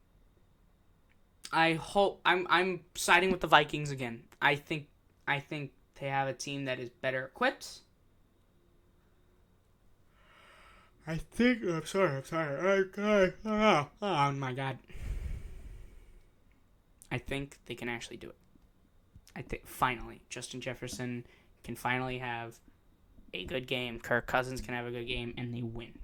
siding with the Vikings again. I think they have a team that is better equipped. I'm sorry. Oh my God. I think they can actually do it. I think finally Justin Jefferson can finally have a good game. Kirk Cousins can have a good game, and they win.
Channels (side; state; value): both; identical; correlation 1.00